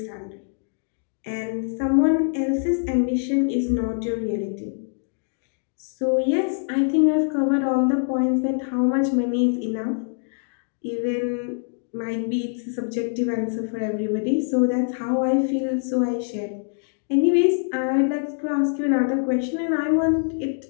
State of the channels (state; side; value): silent; right; digital silence